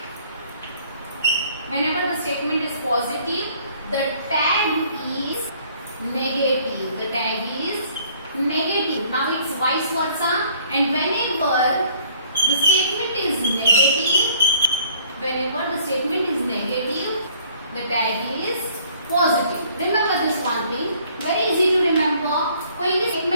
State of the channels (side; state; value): both; inverted; correlation -0.59